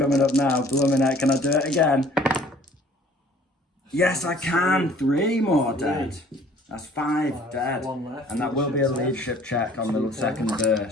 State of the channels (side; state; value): both; normal; correlation 0.53